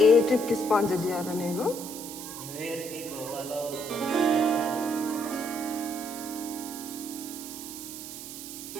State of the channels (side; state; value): right; noise; hiss, 10 dB below the sound